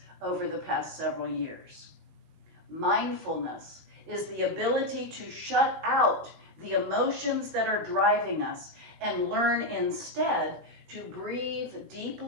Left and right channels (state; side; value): late; left; 18 ms